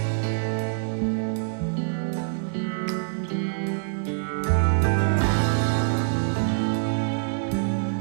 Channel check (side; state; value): left; silent; 62 dB below the other